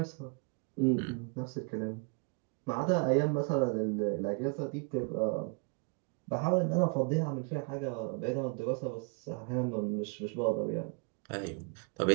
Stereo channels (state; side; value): quieter; left; 34.6 dB